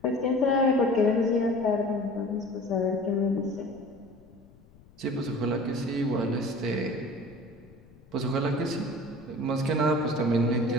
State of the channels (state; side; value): noise; left; rumble, 25 dB below the sound